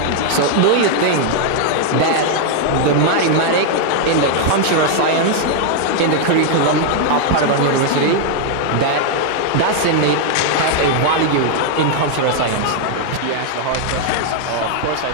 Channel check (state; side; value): different; both; correlation 0.00